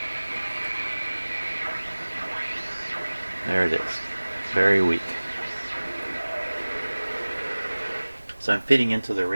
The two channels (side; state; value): both; inverted; correlation -1.00